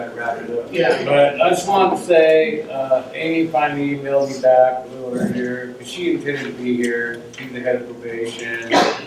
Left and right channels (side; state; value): both; identical; correlation 1.00